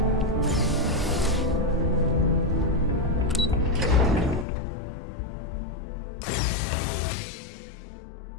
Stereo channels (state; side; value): drops out; right; at 4.5 s